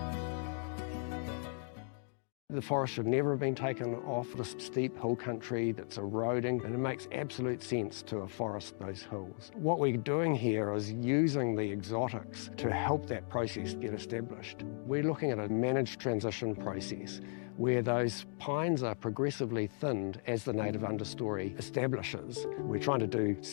The forest should never have been taken off the steep hill country that's eroding, and it makes absolute sense to afforest those hills. What we're doing here is using the exotics to help that process get established. We're looking at a managed transition process where those pines are progressively thinned as the native understory establishes. We're trying to do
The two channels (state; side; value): silent; right; 54 dB below the other